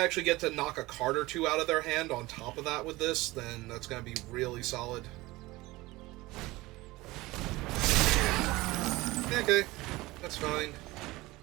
actually get to knock a card or 2 out of their hand on top of that with this, then that's going to be really solid. Okay, that's fine.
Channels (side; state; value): left; quieter; 20.2 dB